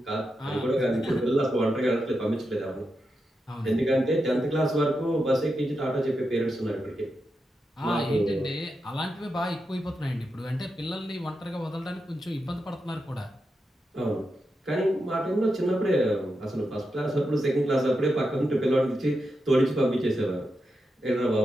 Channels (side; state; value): both; normal; correlation 0.87